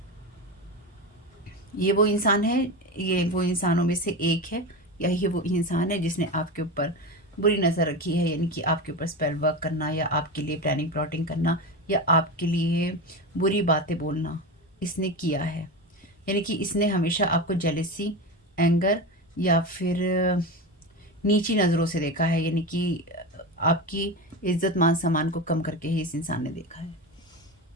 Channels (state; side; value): normal; both; correlation 0.21